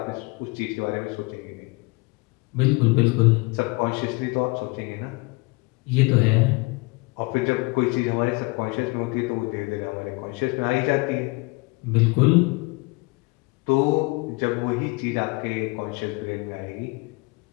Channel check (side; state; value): right; quieter; 26.0 dB